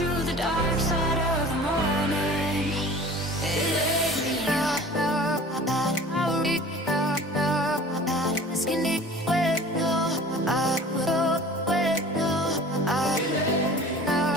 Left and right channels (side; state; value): both; normal; correlation 0.43